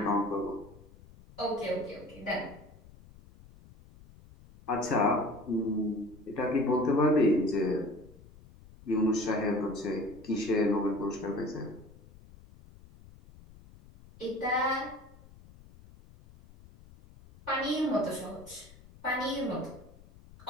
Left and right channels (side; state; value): left; noise; rumble, 22 dB below the sound